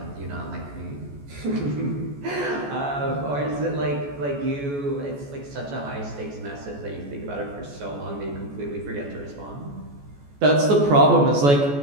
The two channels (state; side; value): late; left; 14 ms